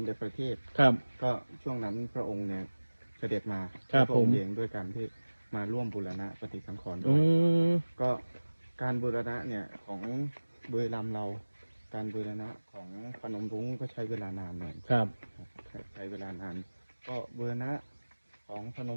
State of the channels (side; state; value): both; inverted; correlation -1.00